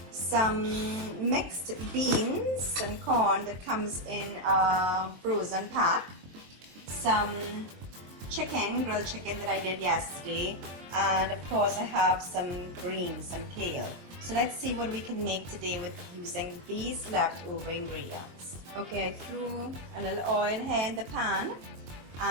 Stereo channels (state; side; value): late; left; 22 ms